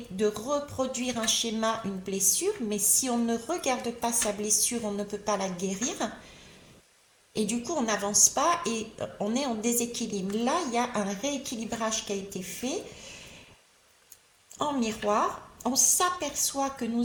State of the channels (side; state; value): both; identical; correlation 1.00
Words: de reproduire un schéma, une blessure. Mais si on ne regarde pas sa blessure, on ne peut pas la guérir. Et du coup, on n'avance pas et on est en déséquilibre. Là, il y a un rééquilibrage qui a été fait en miroir. On s'aperçoit que